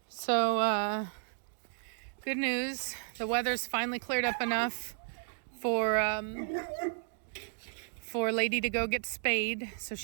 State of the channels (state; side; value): silent; left; 56 dB below the other